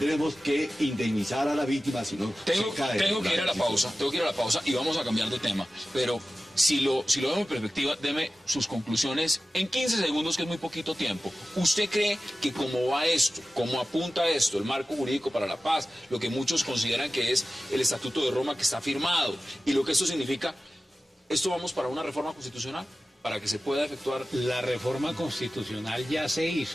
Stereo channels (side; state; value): both; normal; correlation 0.95